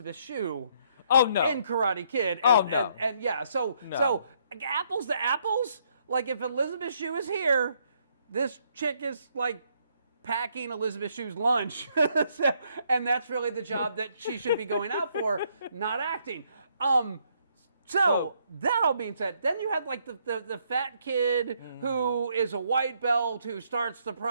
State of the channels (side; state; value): both; inverted; correlation -0.71